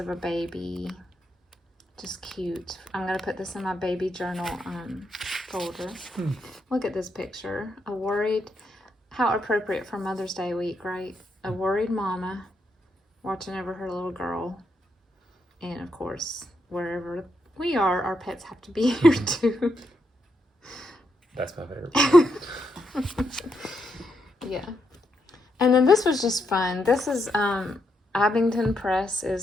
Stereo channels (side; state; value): both; normal; correlation 0.81